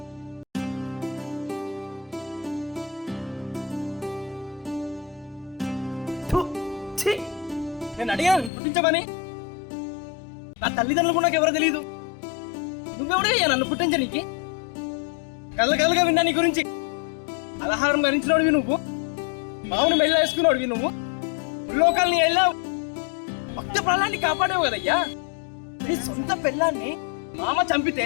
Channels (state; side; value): drops out; right; at 8.5 s